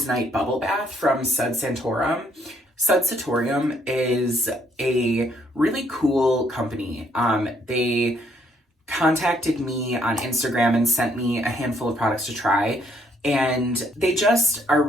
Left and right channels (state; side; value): normal; both; correlation 0.69